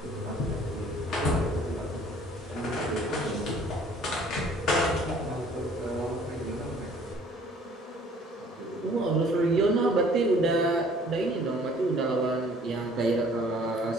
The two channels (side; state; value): both; normal; correlation 0.55